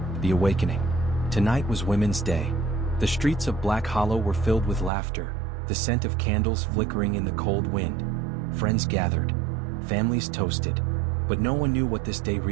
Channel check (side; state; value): left; drops out; at 4.9 s